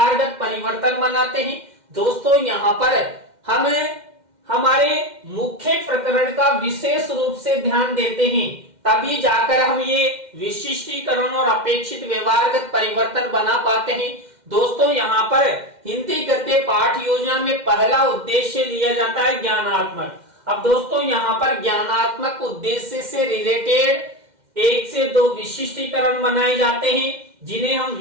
परिवर्तन बनाते हैं। दोस्तों, यहाँ पर हम हमारे मुख्य प्रकरण का विशेष रूप से ध्यान देते हैं, तभी जाकर हम ये विशिष्टीकरण और अपेक्षित व्यवहारगत परिवर्तन बना पाते हैं। दोस्तों, यहाँ पर हिंदी गद्य पाठ योजना में पहला उद्देश्य लिया जाता है ज्ञानात्मक। अब दोस्तों, यहाँ पर ज्ञानात्मक उद्देश्य से रिलेटेड 1 से 2 विशिष्टीकरण बनाए जाते हैं, जिन्हें हम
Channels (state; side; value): late; left; 2.1 ms